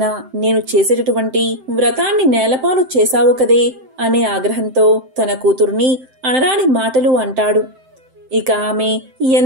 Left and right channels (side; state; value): left; late; 7.7 ms